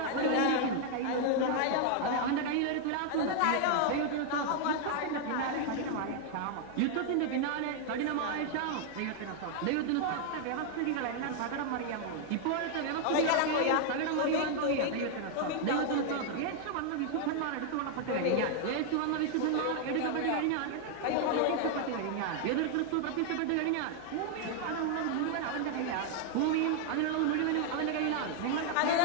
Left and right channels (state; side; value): different; both; correlation 0.00